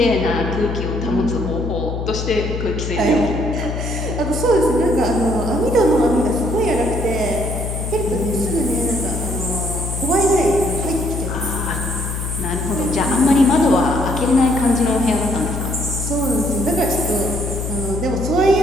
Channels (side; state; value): left; noise; hum, 4 dB below the sound